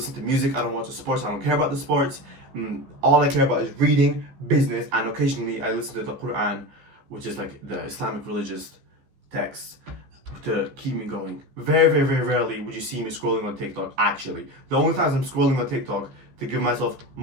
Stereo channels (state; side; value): late; left; 15 ms